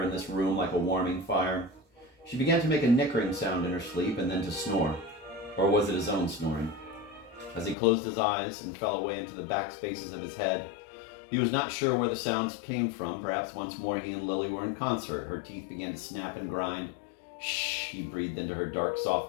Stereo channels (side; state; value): right; drops out; at 7.8 s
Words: in this room like a warming fire. She began to make a nickering sound in her sleep and then to snore. Or was it his own snoring? As he closed his eyes and fell away into the back spaces of his head, he was not sure where the sounds came from. Perhaps once more he and Lily were in concert. Her teeth began to snap and grind. Shh, he breathed into her dark,